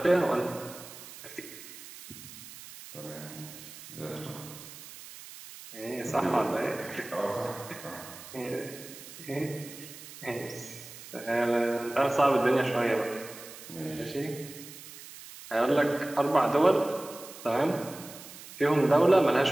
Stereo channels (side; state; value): right; noise; hiss, 15 dB below the sound